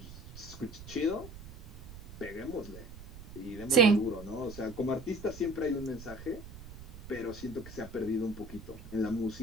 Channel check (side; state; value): right; noise; rumble, 15 dB below the sound